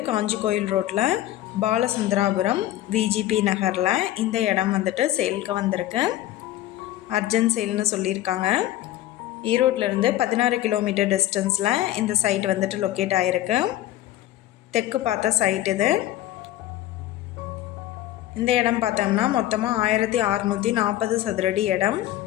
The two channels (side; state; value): right; quieter; 14.1 dB